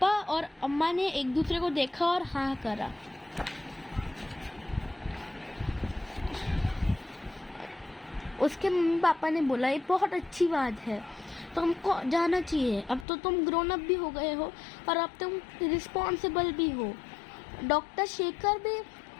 और अम्मा ने एक दूसरे को देखा और हाँ करा। उसके मम्मी पापा ने बोला ये बहुत अच्छी बात है, तुमको जाना चाहिए। अब तो तुम ग्रोन अप भी हो गए हो और अब तुम रिस्पॉन्सिबल भी हो। डॉक्टर शेखर भी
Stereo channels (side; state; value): right; drops out; at 13.1 s